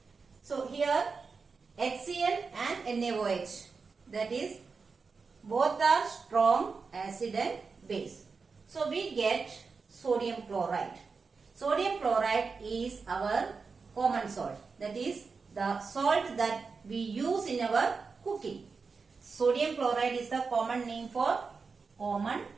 So here HCl and NaOH, that is both are strong acid and base. So we get sodium chloride. Sodium chloride is our common salt. That is the salt that we use in our cooking. Sodium chloride is the common name for common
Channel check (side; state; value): left; quieter; 4.8 dB